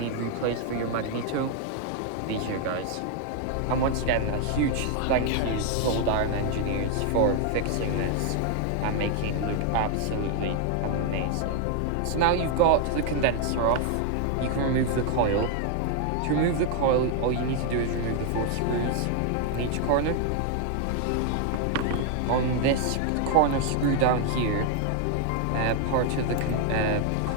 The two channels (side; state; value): both; different; correlation 0.00